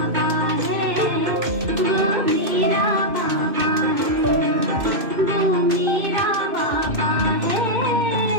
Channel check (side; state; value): left; late; 2.6 ms